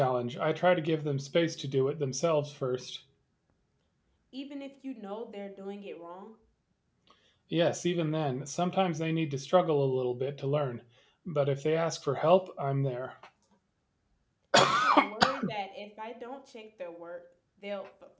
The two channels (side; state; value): both; identical; correlation 1.00